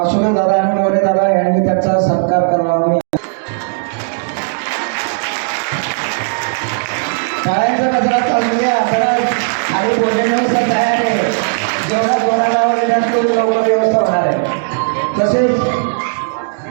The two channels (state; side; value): silent; left; digital silence